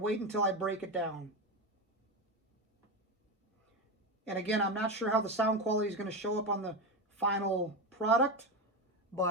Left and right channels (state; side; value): normal; both; correlation 0.16